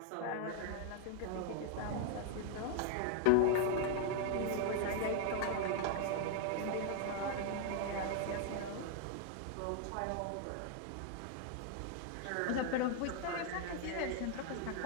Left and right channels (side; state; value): both; different; correlation 0.00